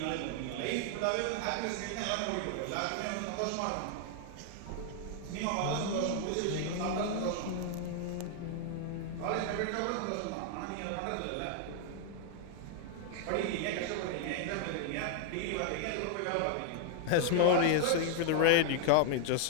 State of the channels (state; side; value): different; both; correlation 0.00